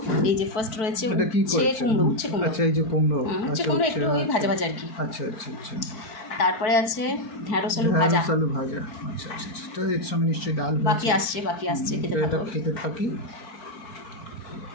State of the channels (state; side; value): late; right; 4.5 ms